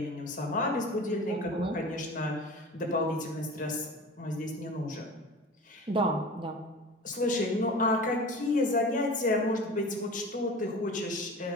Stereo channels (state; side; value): normal; both; correlation 0.36